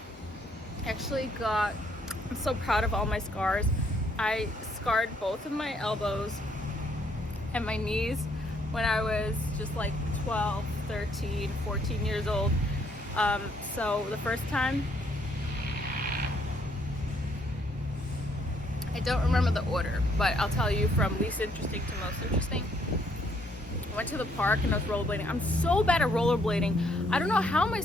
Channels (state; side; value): normal; both; correlation 0.69